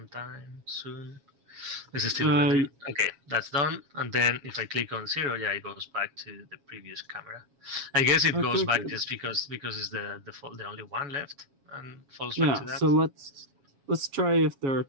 soon. This is still rendering. Okay, that's done. And then if I click on 0, yeah, it goes back to the previous camera. I guess it goes back just because it's the only one left and falls back to that. So let's try if there are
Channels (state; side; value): late; left; 7.2 ms